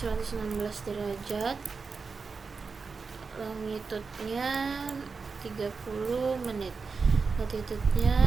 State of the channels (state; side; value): quieter; left; 4.8 dB